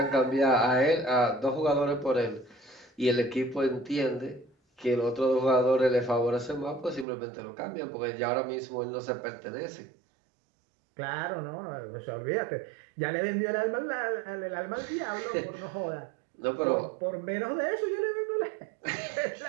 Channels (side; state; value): left; drops out; at 7.1 s